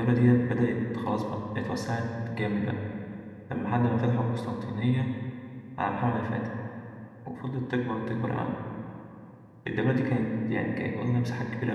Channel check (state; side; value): identical; both; correlation 1.00